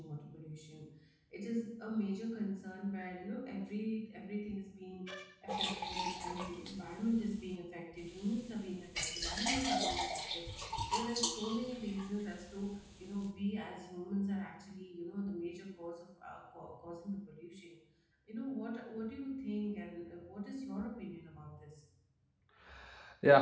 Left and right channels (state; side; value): identical; both; correlation 1.00